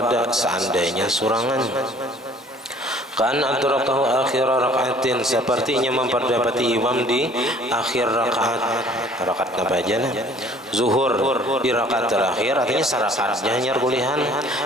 seandainya surangan, kan adrakahu akhir rakaatin, sepertinya memperdapati imam di akhir rakaat. Rakaat apa aja nah? Zuhur di rakaat terakhir, artinya sarakatnya hanya kulihan,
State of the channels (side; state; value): both; normal; correlation 0.54